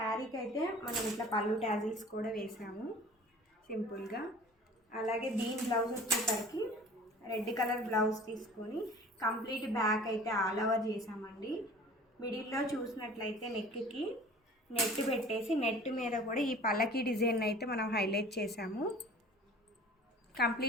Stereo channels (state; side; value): normal; both; correlation 0.45